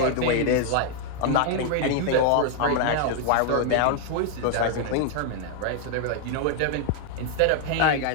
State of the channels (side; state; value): both; different; correlation 0.00